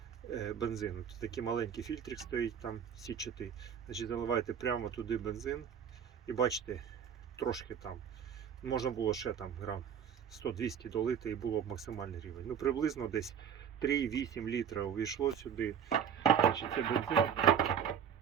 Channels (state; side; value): quieter; left; 8.1 dB